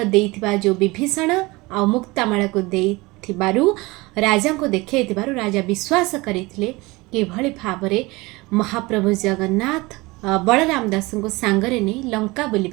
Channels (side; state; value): left; quieter; 22.9 dB